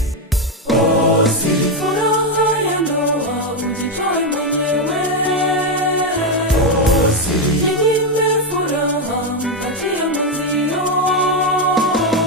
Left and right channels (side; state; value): both; normal; correlation 0.06